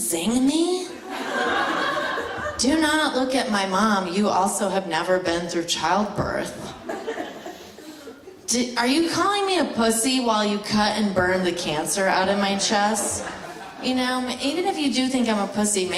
zing me? Do not look at my mom. You also have never been through childbirth. Are you calling me a pussy while you cut and burn the cancer out of my chest? Even if you do think I'm a pussy,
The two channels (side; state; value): both; identical; correlation 1.00